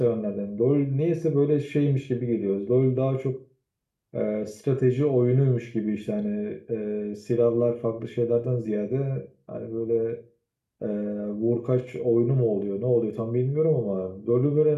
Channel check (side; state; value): both; identical; correlation 1.00